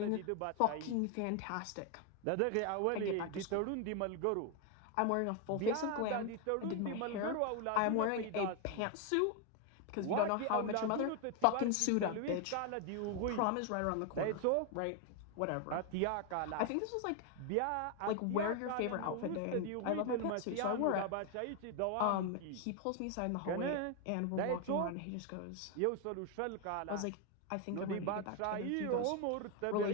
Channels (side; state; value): both; different; correlation 0.01